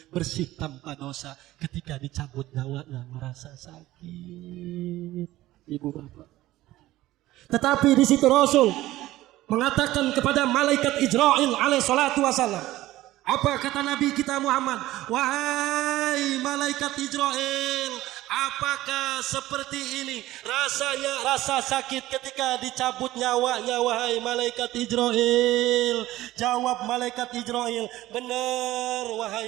bersih tanpa dosa. Ketika dicabut nyawanya merasa sakit. Ibu bapak. Tetapi di situ Rasul mengatakan kepada malaikat Israil alaihi salatu wasallam. Apa kata Nabi kita Muhammad? Wahai malaikat Israil, apakah seperti ini rasanya, rasa sakit ketika dicabut nyawanya, wahai malaikat Israil? Jawab malaikat Israil, benar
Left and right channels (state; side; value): quieter; left; 16.2 dB